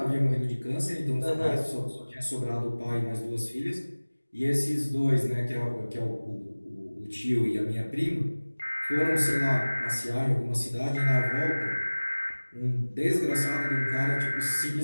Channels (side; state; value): both; inverted; correlation -1.00